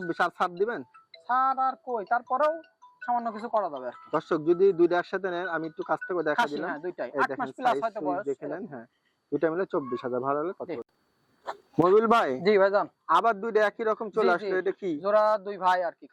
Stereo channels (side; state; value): both; identical; correlation 1.00